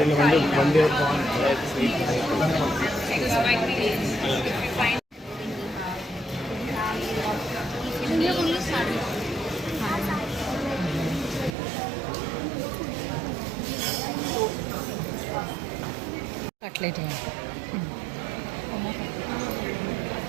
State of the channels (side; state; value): left; drops out; at 11.6 s